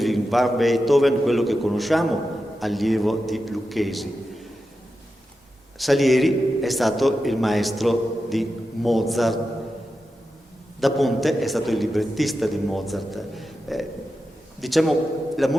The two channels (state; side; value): normal; both; correlation 0.90